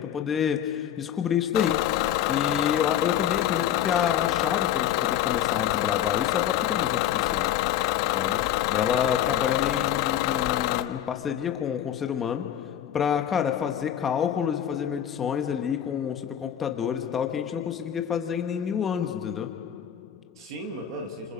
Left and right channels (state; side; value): quieter; right; 10.4 dB